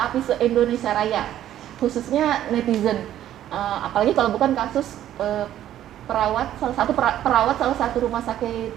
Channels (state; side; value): quieter; left; 12.0 dB